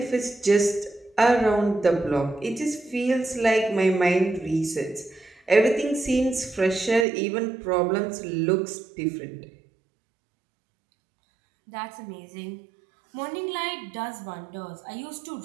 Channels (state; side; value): drops out; left; at 7.1 s